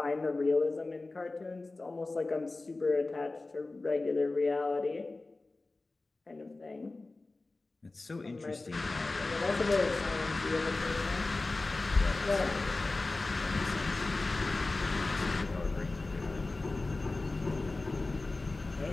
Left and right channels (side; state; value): right; quieter; 3.3 dB